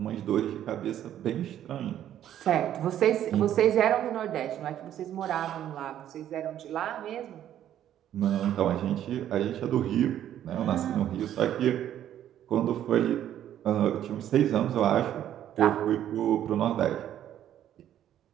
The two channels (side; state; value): left; quieter; 11.1 dB